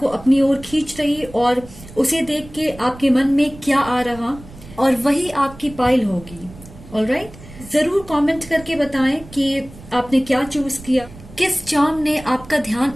अपनी ओर खींच रही और उसे देख के आपके मन में क्या आ रहा और वही आपकी पाइल होगी। ऑलराइट, जरूर कमेंट करके बताएं कि आपने क्या चूज किया, किस चार्म ने आपका ध्यान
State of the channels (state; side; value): noise; right; rumble, 18 dB below the sound